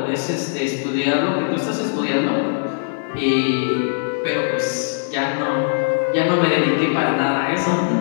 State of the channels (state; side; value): silent; right; 66 dB below the other